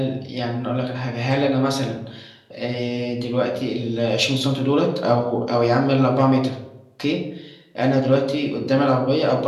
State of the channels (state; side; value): identical; both; correlation 1.00